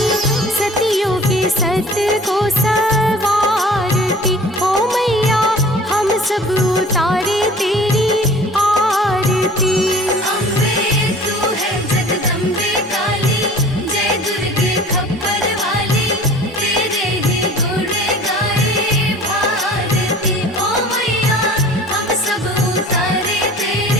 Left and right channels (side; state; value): both; normal; correlation 0.45